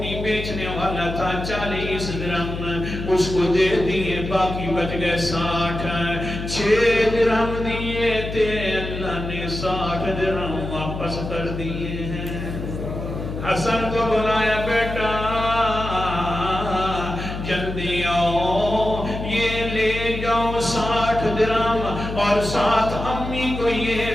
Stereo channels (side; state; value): left; noise; hum, 6 dB below the sound